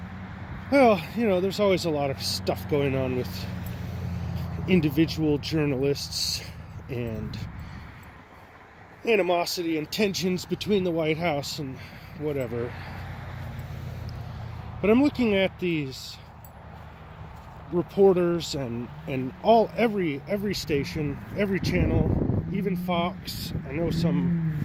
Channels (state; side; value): identical; both; correlation 1.00